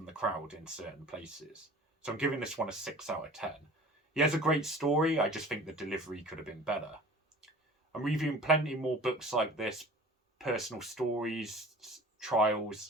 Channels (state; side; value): normal; both; correlation 0.43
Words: the crowd in certain places. So I'm giving this one a 6 out of 10. He has a great story, I just think the delivery could have been better. I'm reviewing plenty more books like this, personal stories,